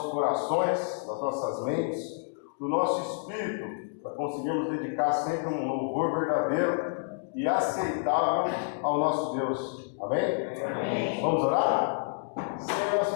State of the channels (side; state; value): right; silent; digital silence